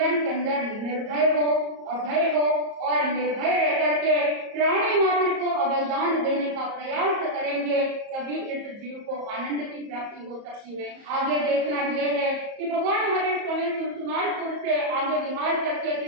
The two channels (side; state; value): left; late; 34 ms